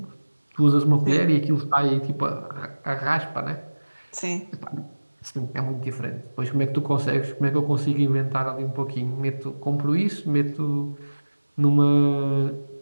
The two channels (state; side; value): inverted; both; correlation -1.00